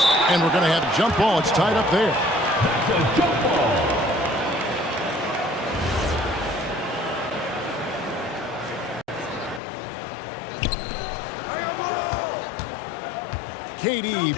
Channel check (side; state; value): right; drops out; at 9.6 s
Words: And we're going to have a jump ball. It's tied up there.